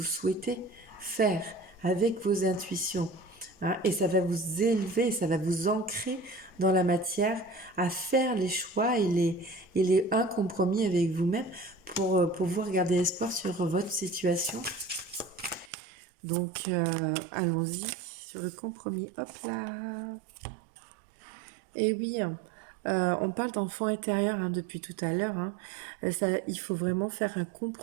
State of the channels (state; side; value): drops out; left; at 15.7 s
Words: souhaitez faire avec vos intuitions, hein. Et ça va vous élever, ça va vous ancrer dans la matière à faire les choix et les un compromis avec vous-même pour pouvoir garder espoir sur votre situation. Donc, allons-y sur le compromis. Hop là. Et oui, on parle d'enfant intérieur, hein, depuis tout à l'heure, hein. Il faut vraiment faire un